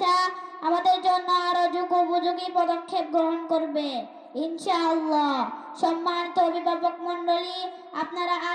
আমাদের জন্য আরো যুগোপযোগী পদক্ষেপ গ্রহণ করবে ইনশাআল্লাহ। সম্মানিত অভিভাবক মণ্ডলী, আপনারা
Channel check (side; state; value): both; identical; correlation 1.00